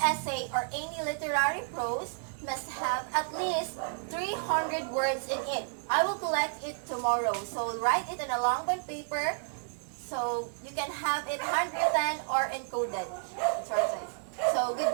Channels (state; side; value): silent; left; digital silence